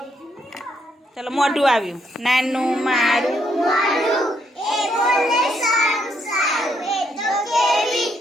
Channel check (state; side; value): normal; both; correlation 0.74